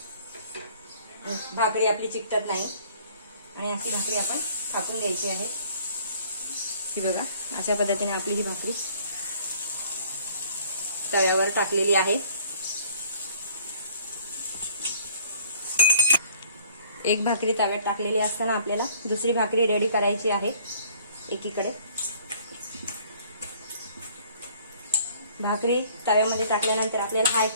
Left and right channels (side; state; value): both; inverted; correlation -0.56